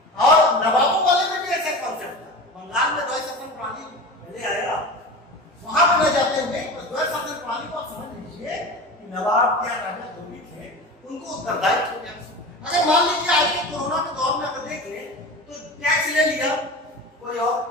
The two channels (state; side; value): normal; both; correlation 0.31